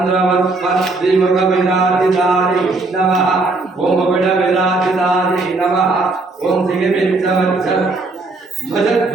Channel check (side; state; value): left; quieter; 3.4 dB